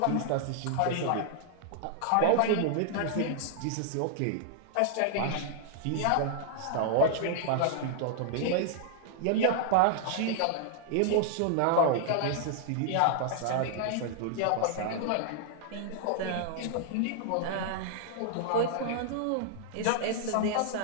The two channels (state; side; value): different; both; correlation -0.01